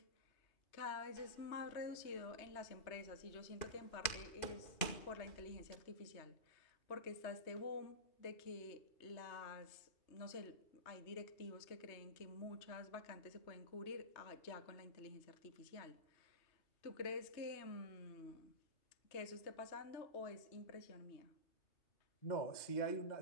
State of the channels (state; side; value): late; right; 2.4 ms